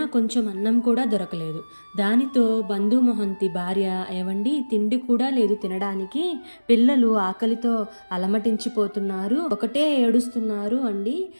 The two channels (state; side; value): inverted; both; correlation -1.00